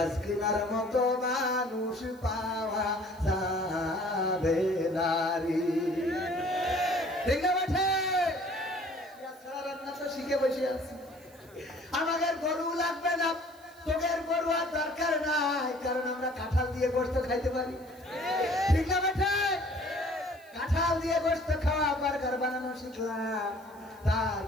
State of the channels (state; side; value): noise; right; hiss, 27 dB below the sound